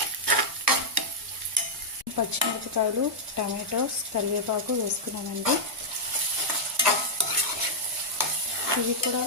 పచ్చిమిరపకాయలు, టమాటోస్, కరివేపాకు వేసుకున్నానండి. ఇవి కూడా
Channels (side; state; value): both; normal; correlation -0.06